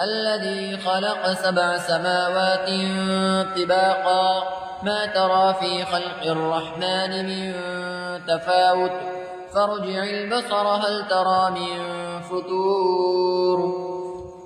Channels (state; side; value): identical; both; correlation 1.00